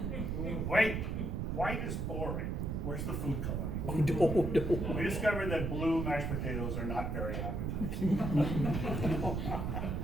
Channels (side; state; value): right; noise; rumble, 1 dB below the sound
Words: Wait, white is boring. Where's the food coloring? Oh, no. We discovered that blue mashed potatoes are not very appetizing.